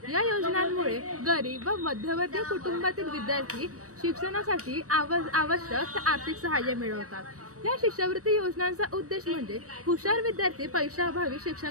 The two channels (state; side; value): late; left; 0.66 ms